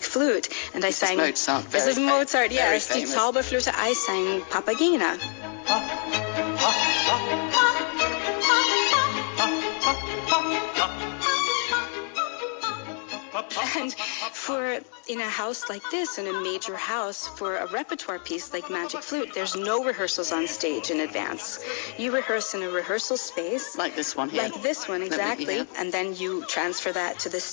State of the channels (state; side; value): quieter; right; 39.1 dB